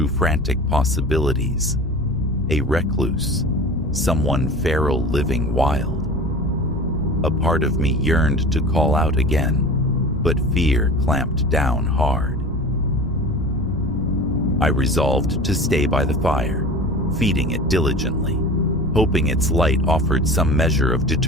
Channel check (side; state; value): left; noise; rumble, 13 dB below the sound